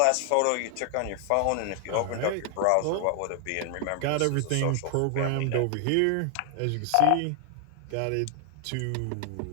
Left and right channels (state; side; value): different; both; correlation 0.00